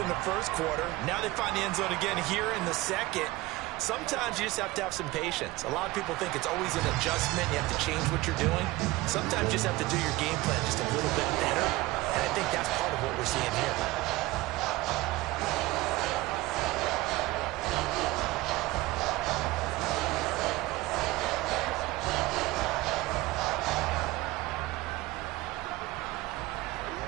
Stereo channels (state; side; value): quieter; left; 19.6 dB